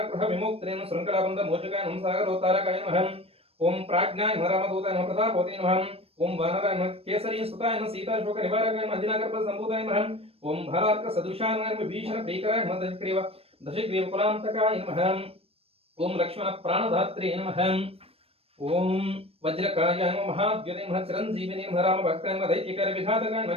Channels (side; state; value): left; late; 0.28 ms